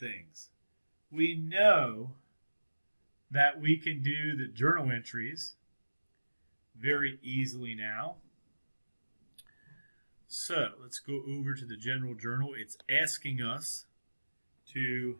We know that we can do the journal entries very easily now. So let's go over to the general journal. It's asking us to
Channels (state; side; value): inverted; both; correlation -1.00